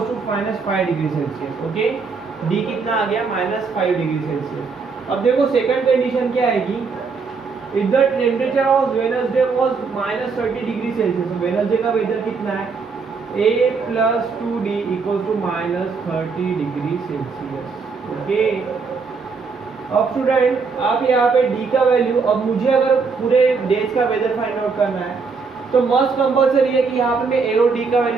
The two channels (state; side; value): quieter; left; 4.9 dB